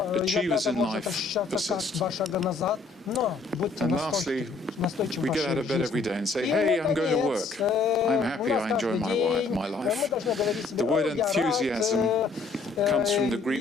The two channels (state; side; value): quieter; right; 4.1 dB